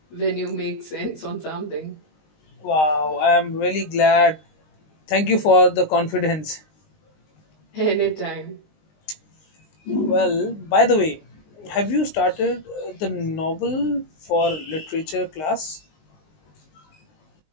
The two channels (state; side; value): late; right; 19 ms